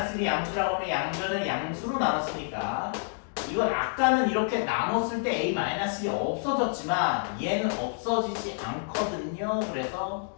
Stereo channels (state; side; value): silent; right; digital silence